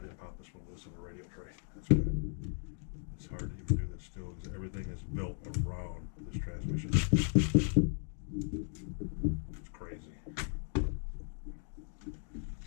pop this one loose on the radio tray. That's good. It's hard to even do this still because everything is built around this transmission. It's crazy.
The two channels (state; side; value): silent; right; 53 dB below the other